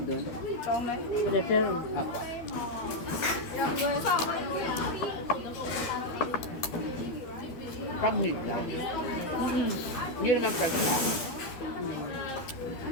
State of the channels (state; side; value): late; right; 13 ms